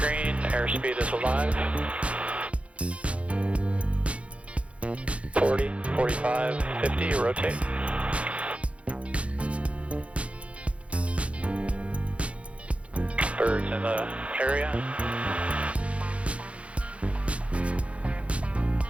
airspeed is alive. 40, 45, 50, rotate. Birds in the area.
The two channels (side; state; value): left; late; 0.062 ms